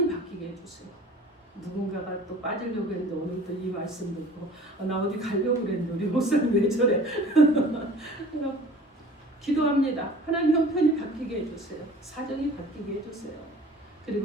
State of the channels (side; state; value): both; normal; correlation 0.45